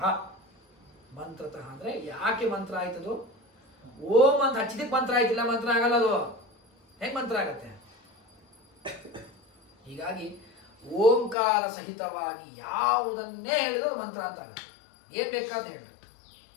ಮಂತ್ರತಃ ಅಂದರೆ ಯಾಕೆ ಮಂತ್ರ ಆಯ್ತದು? ಓಂ ಅಂತ ಹಚ್ಚಿದಕ್ಕೆ ಮಂತ್ರ ಆಯ್ತಿಲ್ಲ, ಮಂತ್ರ ಆಗಲ್ಲ. ಅದು ಹೆಂಗೆ ಮಂತ್ರ ಆಗತ್ತೆ? ಹೀಗಾಗಿ ಓಂಕಾರ ಸಹಿತವಾಗಿ ಯಾವುದನ್ನೇ ಹೇಳಿದ್ರು ಅದು ಮಂತ್ರ ಅಂತ ಆಗುತ್ತೆ. ಏನು ಬೇಕಾದ ಹೇಳಿ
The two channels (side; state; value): right; drops out; at 11.4 s